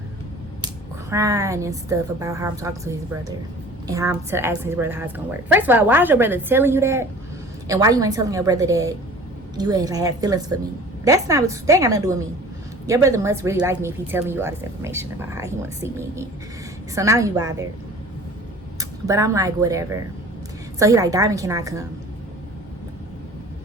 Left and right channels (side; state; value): both; normal; correlation 0.45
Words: crying and stuff about how I'm talking to his brother and how I'm asking his brother how it's gonna work. First of all, why is your brother telling you that? And why you ain't telling your brother that you had feelings for me? That ain't got nothing to do with me. Your brother must really like me if he's telling you all this information about how he wants to see me again. So now you bothered. But I'm like, whatever. So he like, Diamond, can I come?